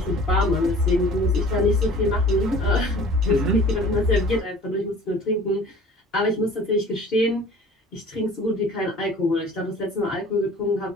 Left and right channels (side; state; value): both; normal; correlation 0.47